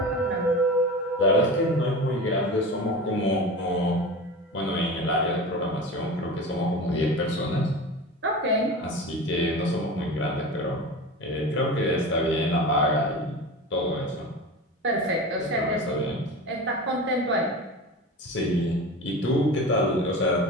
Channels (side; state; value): both; normal; correlation 0.31